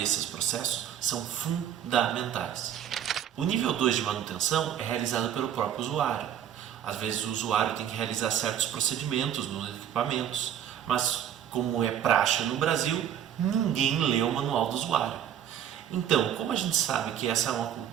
processos são fundamentais. O nível 2 de manutenção é realizado pelo próprio usuário. Às vezes o usuário tem que realizar certos procedimentos nos equipamentos, mas como é praxe no Brasil, ninguém lê o manual do usuário. Então, como a gente sabe que essa é uma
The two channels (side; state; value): left; quieter; 9.9 dB